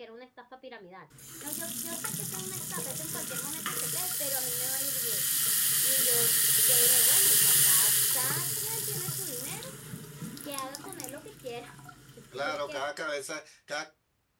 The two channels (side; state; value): both; identical; correlation 1.00